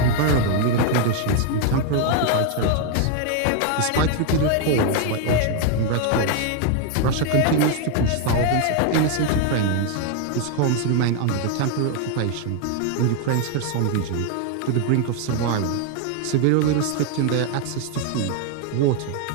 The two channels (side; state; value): both; different; correlation 0.00